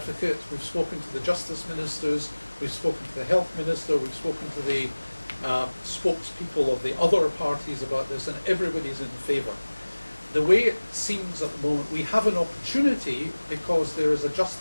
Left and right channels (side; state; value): both; inverted; correlation -1.00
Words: we've spoken to the Justice Ministers, we've spoken to the Health Minister, we've spoken to the spokespeople of the other parties about this, and everybody's in favour. The way it seems at the moment, we have an opportunity, because there is a